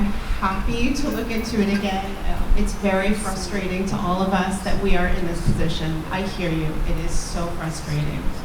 happy to look into it again. It's very frustrating to all of us that we are in this position. I hear you. It is so frustrating.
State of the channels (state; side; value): identical; both; correlation 1.00